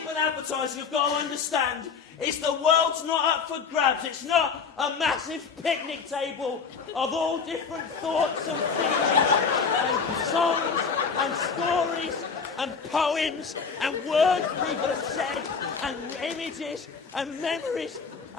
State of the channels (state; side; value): quieter; right; 5.6 dB